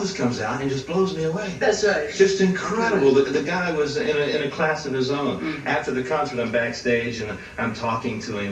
comes out and just blows me away. That's right. Just incredible. The guy was in a class of his own. After the concert, I'm backstage and I'm talking to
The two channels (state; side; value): identical; both; correlation 1.00